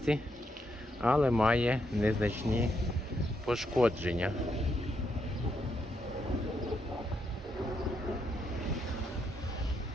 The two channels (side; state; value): both; normal; correlation 0.79